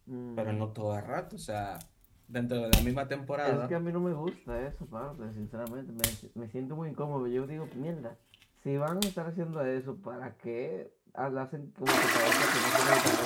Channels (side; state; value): both; identical; correlation 1.00